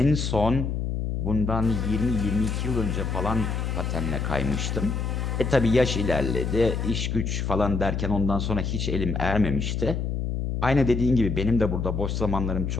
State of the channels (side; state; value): left; noise; hum, 1 dB below the sound